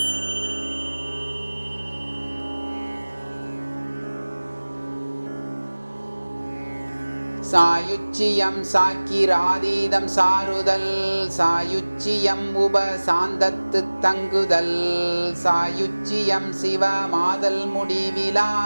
சாயுச்சியம் சாக்கிராதீதம் சாருதல், சாயுச்சியம் உபசாந்தத்து தங்குதல், சாயுச்சியம் சிவமாதல் முடிவிலா,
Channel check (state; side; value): inverted; both; correlation -1.00